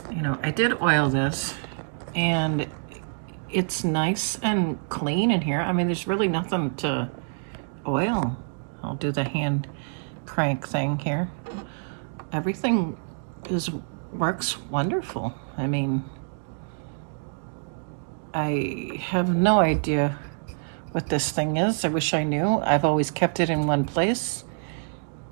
you know, I did oil this, and it's nice and clean in here. I mean, there's really nothing to oil. I'll do the hand crank thing here. Everything works wonderful. I mean, I have no idea what this thing is. I wish I knew. I've always kept it in one place,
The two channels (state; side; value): silent; left; digital silence